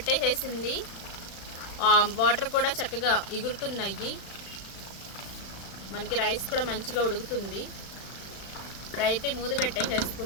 వాటర్ కూడా చక్కగా ఎగురుతున్నాయి. మనకి రైస్ కూడా మంచిగా ఉడుకుతుంది. ఇప్పుడైతే మూత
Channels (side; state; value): right; late; 35 ms